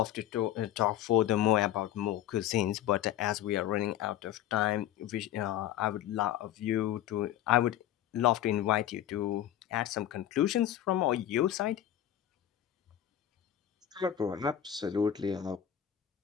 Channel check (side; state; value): right; quieter; 11.5 dB